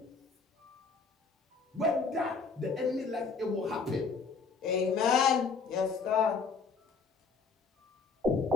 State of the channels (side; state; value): right; quieter; 4.9 dB